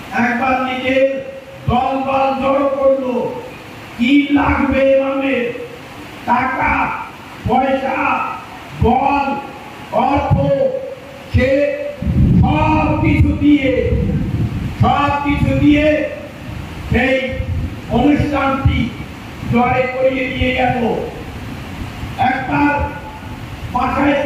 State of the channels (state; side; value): identical; both; correlation 1.00